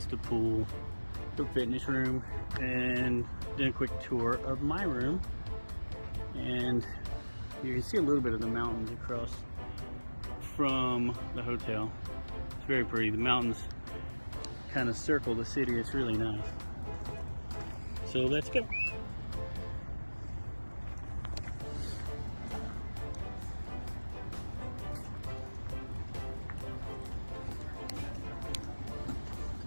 the pool, the fitness room, and then a quick tour of my room. And you can see a little bit of the mountains across from the hotel. It's very pretty. The mountains kind of circle the city. It's really nice. So let's go.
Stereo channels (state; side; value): inverted; both; correlation -1.00